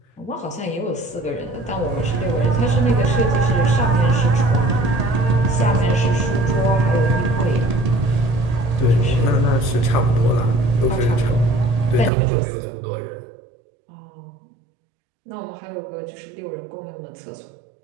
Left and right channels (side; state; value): left; drops out; at 12.1 s